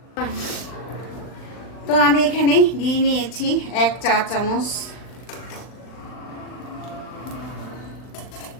তো আমি এখানে ঘি নিয়েছি 1 চা চামচ।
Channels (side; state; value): right; late; 39 ms